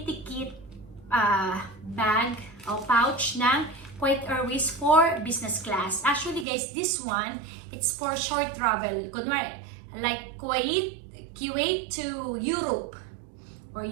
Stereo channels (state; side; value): drops out; left; at 6.5 s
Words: kit bag o pouch ng KUWAIT Airways for business class. Actually guys, this one, it's for short travel. Kunwari, like KUWAIT to Europe or